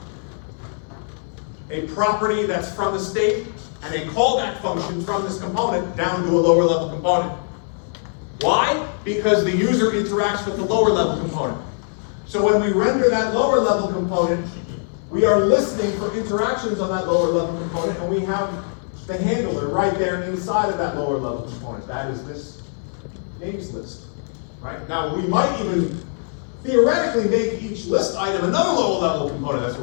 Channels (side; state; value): right; silent; 64 dB below the other